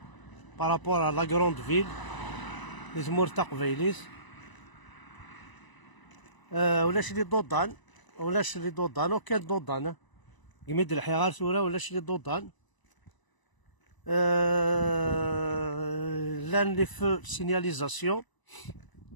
بارابور لا كروند فيل ذي تمور تقبيليت ولاش لي دودان ولاش لي دودان وكان دودان قميد الحيغار ثورة ولاش لي دودان لان لي فو سينياليزاسيون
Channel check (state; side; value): late; right; 1.0 ms